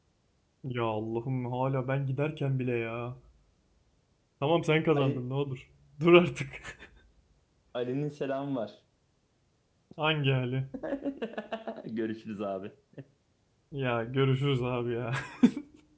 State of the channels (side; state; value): both; identical; correlation 1.00